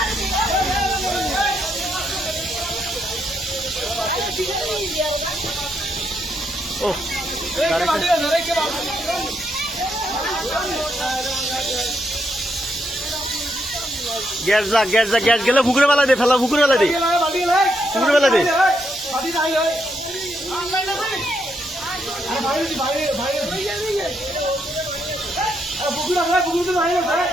ও গ্যাস যা, গ্যাস যা, গ্যাস গেলে পুকুরে বেলা দে, ফেলা পুকুরে বেলা দে, পুকুরে বেলা দে।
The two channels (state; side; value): normal; both; correlation 0.78